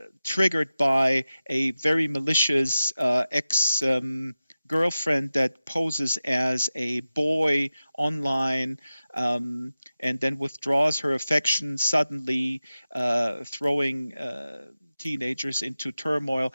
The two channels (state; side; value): inverted; both; correlation -0.94